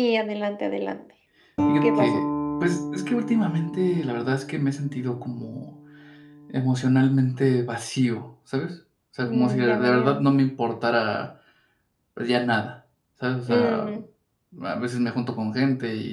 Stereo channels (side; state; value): both; identical; correlation 1.00